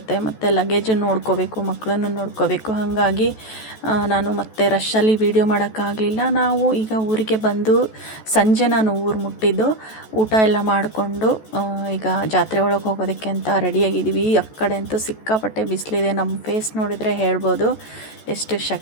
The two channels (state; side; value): late; right; 14 ms